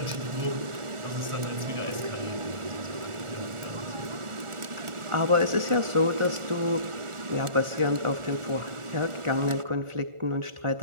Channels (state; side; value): late; left; 1.4 ms